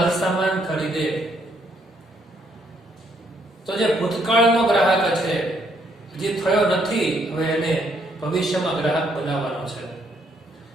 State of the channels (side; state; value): both; normal; correlation 0.71